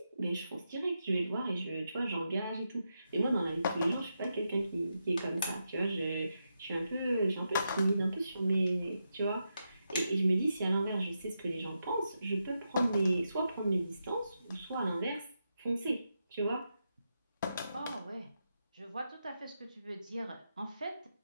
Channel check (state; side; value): inverted; both; correlation -0.86